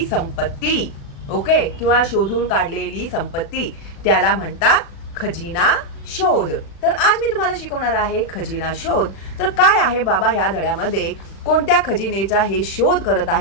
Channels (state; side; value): late; right; 36 ms